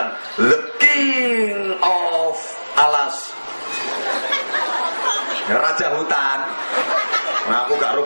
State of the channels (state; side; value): inverted; both; correlation -1.00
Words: The King of Alas, Raja Hutan. Nah, aku gak tahu